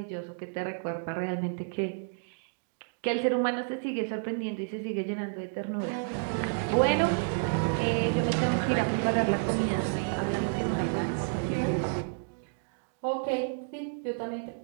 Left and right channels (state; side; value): silent; left; digital silence